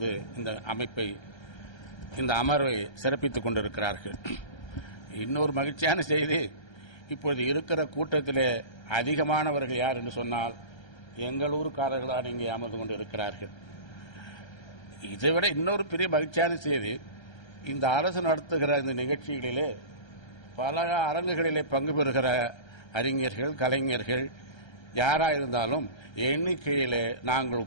இந்த அமர்வை சிறப்பித்துக் கொண்டிருக்கிறார்கள். இன்னொரு மகிழ்ச்சியான செய்தி, இப்பொழுது இருக்கிற கூட்டத்திலே அதிகமானவர்கள் யார் என்று சொன்னால் எங்கள் ஊருக்காரர்களான இங்கே அமர்ந்து கொண்டு இருக்கிறார்கள். இதைவிட இன்னொரு பெரிய மகிழ்ச்சியான செய்தி, இந்த அரசு நடத்துகிற இந்த நிகழ்ச்சிகளிலே பல அரங்குகளிலே பங்கு பெறுகிற அறிஞர்கள், கலைஞர்கள் யாராயிருந்தாலும் எண்ணிக்கையிலே நாங்கள்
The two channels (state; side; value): late; right; 1.3 ms